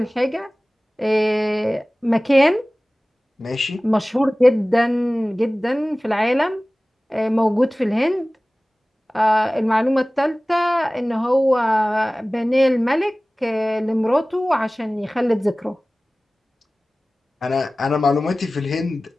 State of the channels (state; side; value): normal; both; correlation 0.98